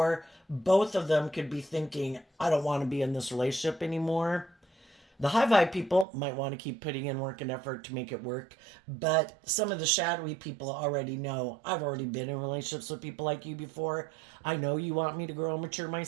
Both of them could be thinking, I don't want to be in this relationship anymore. The high vibe people might want to keep putting in work and effort to make it work, but some of the shadowy people already know, I've already been in relationships with people like you before. I know you want me to grow and mature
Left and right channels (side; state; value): left; drops out; at 6.1 s